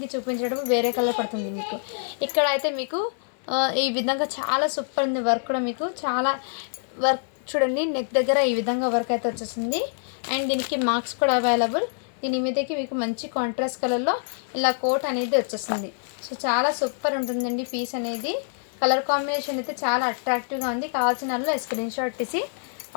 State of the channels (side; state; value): right; silent; 60 dB below the other